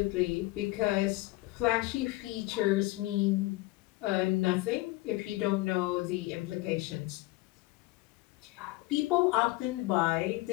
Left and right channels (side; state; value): right; quieter; 20.5 dB